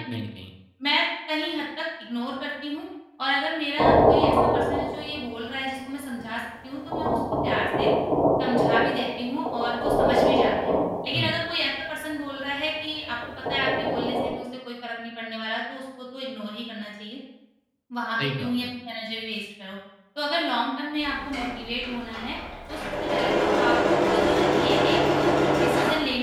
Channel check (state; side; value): identical; both; correlation 1.00